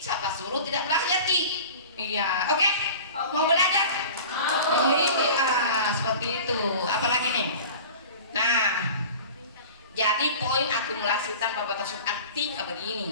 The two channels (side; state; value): both; inverted; correlation -0.39